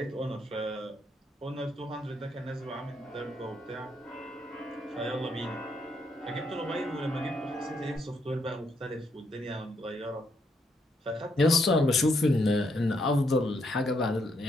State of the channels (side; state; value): both; normal; correlation 0.75